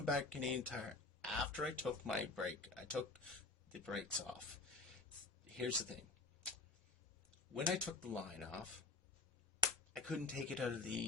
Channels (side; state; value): right; quieter; 3.8 dB